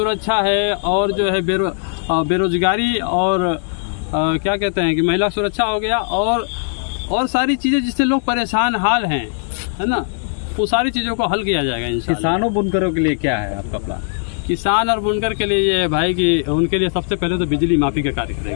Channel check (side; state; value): right; silent; digital silence